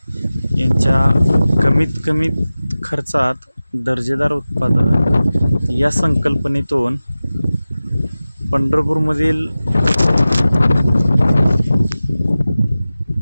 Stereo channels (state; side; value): inverted; both; correlation -0.96